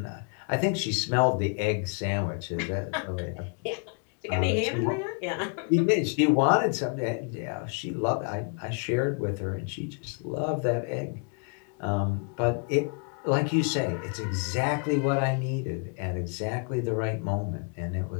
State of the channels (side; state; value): right; quieter; 39.1 dB